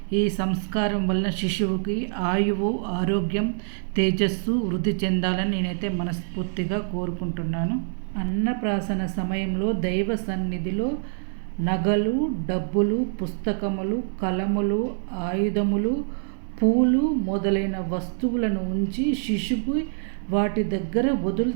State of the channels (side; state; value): left; silent; 62 dB below the other